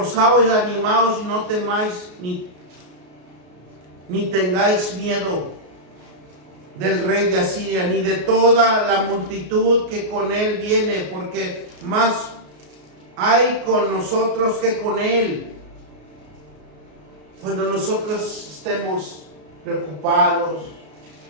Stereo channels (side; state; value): left; late; 33 ms